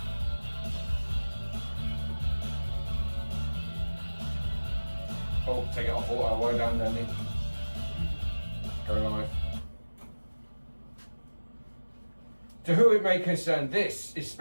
Oh, take it off auto, way down, Danny. Go live. To who it may concern, this is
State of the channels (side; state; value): both; inverted; correlation -1.00